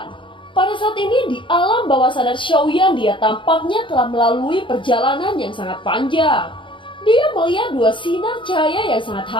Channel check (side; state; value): right; late; 0.24 ms